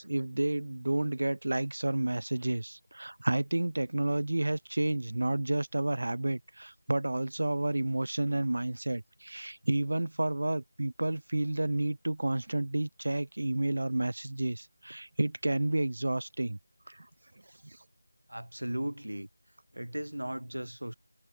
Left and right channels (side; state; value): both; inverted; correlation -1.00